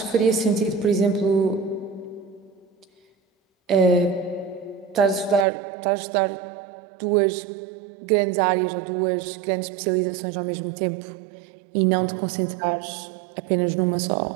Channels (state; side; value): drops out; left; at 5.5 s